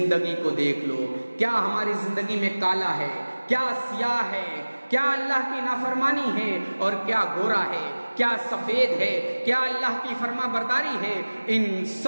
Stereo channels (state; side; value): inverted; both; correlation -1.00